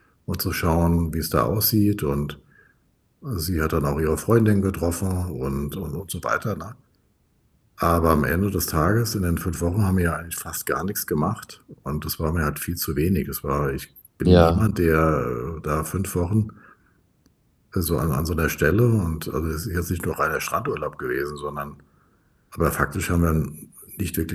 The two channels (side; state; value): both; identical; correlation 1.00